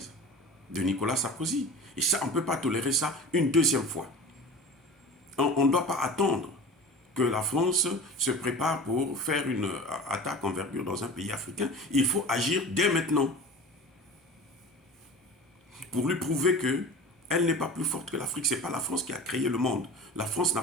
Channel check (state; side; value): normal; both; correlation 0.36